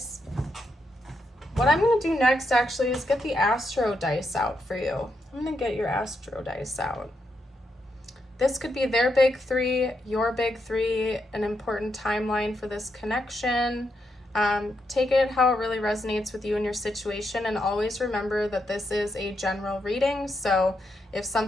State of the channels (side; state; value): both; normal; correlation 0.82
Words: What I'm going to do next, actually, is get the Astro dice out for you. I'm going to get your Astro dice out. This could be their big three, your big three, an important timeline for this connection. Take it how it really resonates with you and your situation, and always remember that this is a general reading, so if